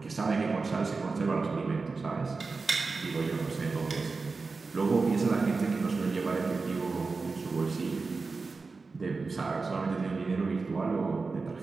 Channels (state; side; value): quieter; left; 4.2 dB